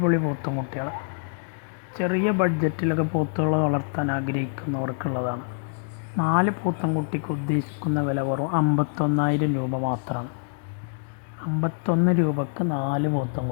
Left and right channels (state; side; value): silent; right; 61 dB below the other